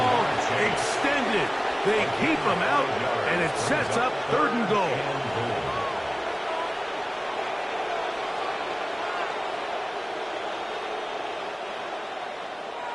extended. They keep him out, and it sets up third and goal.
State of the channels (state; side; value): identical; both; correlation 1.00